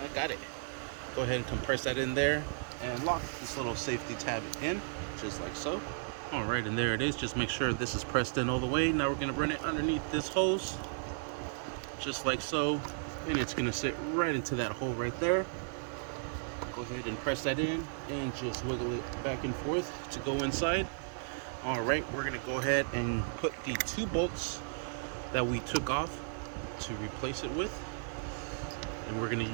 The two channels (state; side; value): silent; left; digital silence